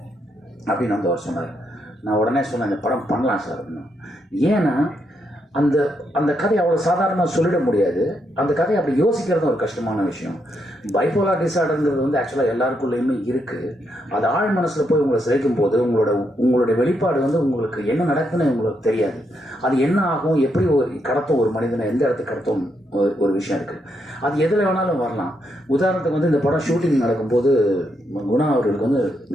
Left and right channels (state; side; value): normal; both; correlation 0.79